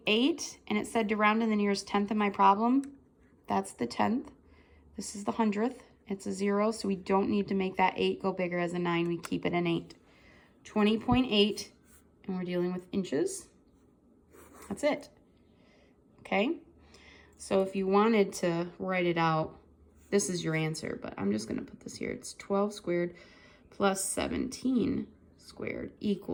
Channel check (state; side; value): identical; both; correlation 1.00